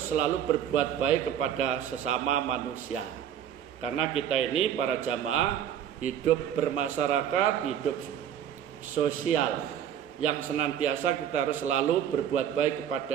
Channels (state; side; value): quieter; left; 9.5 dB